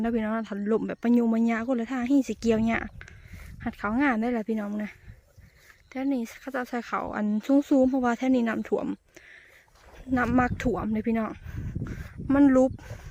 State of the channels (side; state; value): both; identical; correlation 1.00